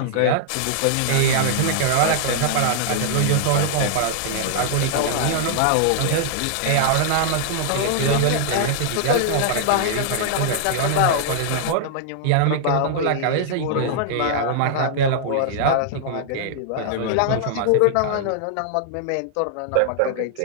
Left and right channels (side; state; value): both; different; correlation -0.01